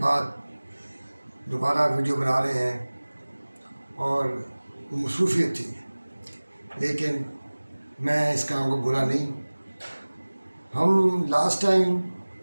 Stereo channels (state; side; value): inverted; both; correlation -1.00